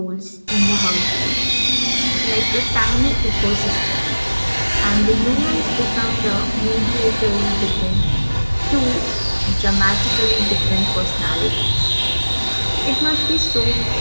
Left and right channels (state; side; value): inverted; both; correlation -1.00